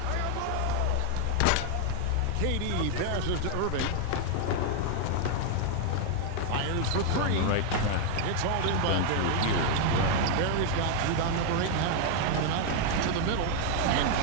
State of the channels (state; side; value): different; both; correlation 0.00